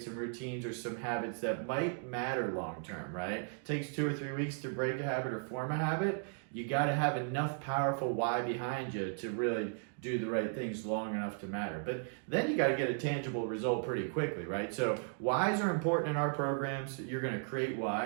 some routines or some habits that might matter long term, right? It takes 2 or 3 weeks to break a habit or form a habit. You got to have enough powerful why behind you to really do the right things long enough to matter. But then you got to get a tangible result pretty quickly, right? So whys are important in our programs. You're going to create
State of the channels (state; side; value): silent; left; 54 dB below the other